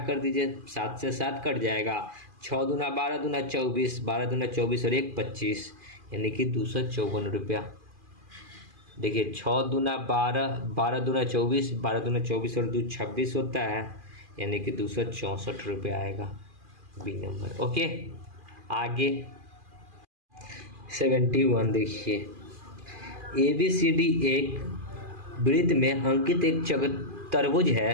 दीजिए, 7 से 7 कट जाएगा, 6 दूना 12 दूना 24, 12 दूना 24 और 1 25, यानी कि 254 रुपया। देखिए 6×2 = 12, 12×2 = 24, 12×2 और 2 26 होता है, यानी कि 264 रुपये आएगा बी नंबर। ओके, आगे 71 देखिए, ABCD एक वृत्त में अंकित एक चतुर्भुज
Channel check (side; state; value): left; late; 2.4 ms